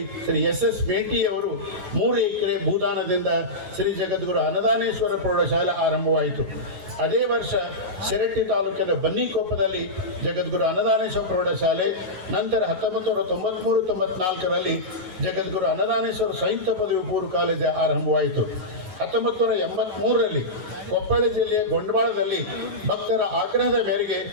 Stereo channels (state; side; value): late; left; 9.3 ms